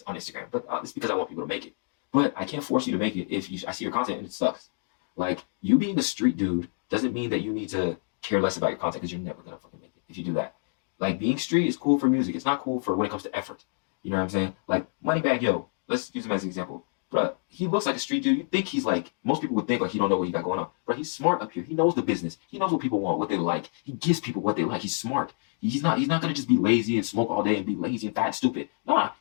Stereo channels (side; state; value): right; silent; 58 dB below the other